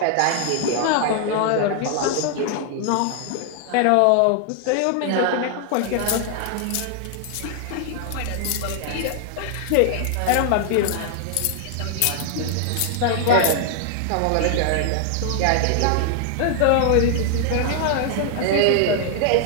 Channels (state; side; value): different; both; correlation 0.00